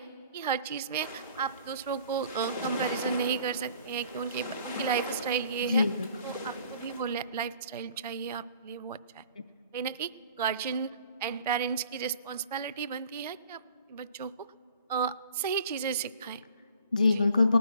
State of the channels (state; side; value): inverted; both; correlation -0.52